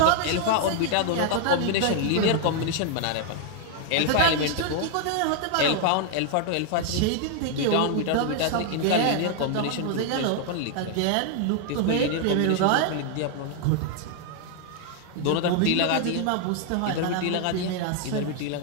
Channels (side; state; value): both; different; correlation 0.00